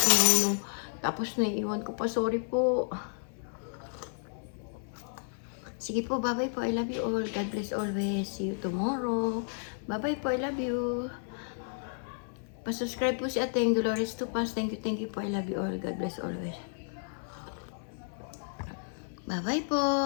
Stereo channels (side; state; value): right; silent; 56 dB below the other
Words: Tapos naiiwan ko pa. Sorry po. Sige po, bye-bye po. I love you all. God bless always. See you tomorrow. Bye-bye po. I love you. Pa-subscribe po si Ateng Dolores Tupas. Thank you po. I love you all. God bless always. Bye-bye po.